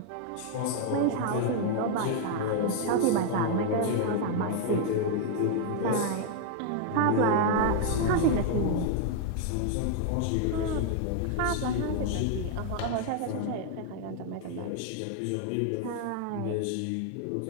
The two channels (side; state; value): both; different; correlation 0.00